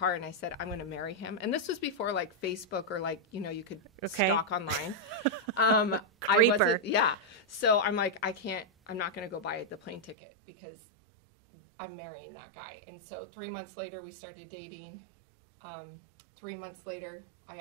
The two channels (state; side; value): drops out; left; at 10.2 s